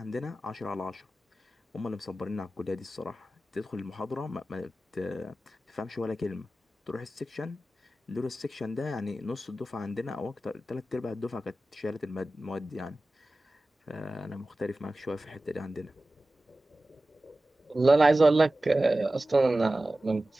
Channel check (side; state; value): both; normal; correlation 0.96